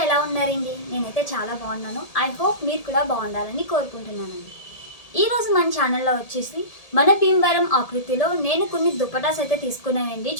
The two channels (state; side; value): late; right; 1.8 ms